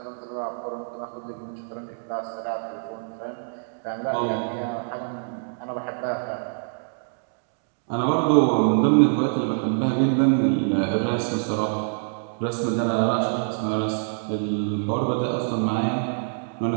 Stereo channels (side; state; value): left; silent; digital silence